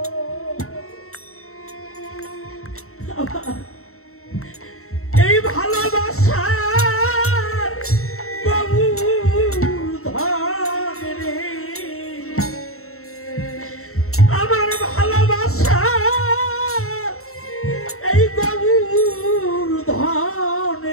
এই ভালোবাসা আমার ভালোবাসা এই গৌর ধন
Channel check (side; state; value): right; late; 0.63 ms